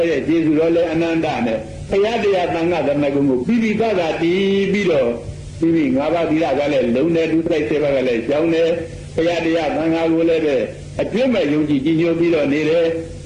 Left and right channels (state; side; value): identical; both; correlation 1.00